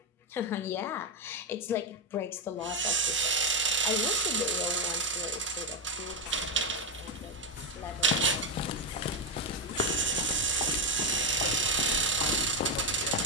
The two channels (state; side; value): normal; both; correlation 0.06